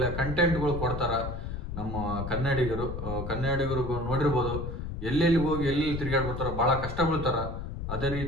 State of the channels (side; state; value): left; noise; rumble, 6 dB below the sound